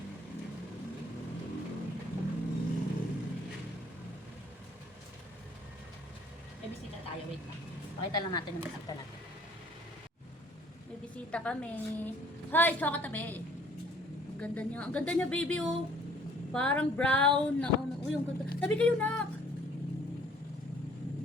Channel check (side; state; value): both; normal; correlation 0.58